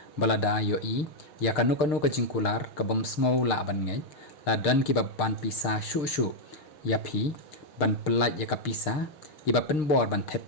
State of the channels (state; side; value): late; right; 6.6 ms